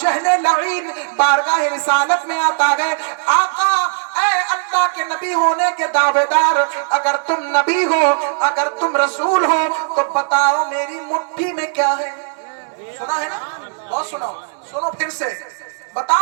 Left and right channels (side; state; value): left; silent; digital silence